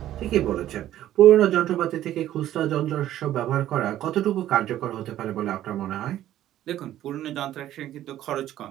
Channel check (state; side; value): quieter; left; 12.8 dB